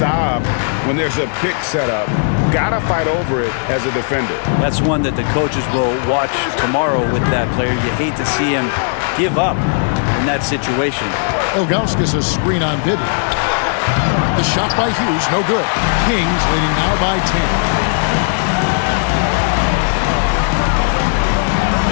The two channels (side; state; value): right; silent; digital silence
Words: when there's a pick set up. Gotta fight over it as a defender. That's one that the coaches will watch tomorrow with that player. You hate to see him give up in that situation. Ilgauskas a screen on Bibby. The shot by Hughes, no good. Kings leading now by 10.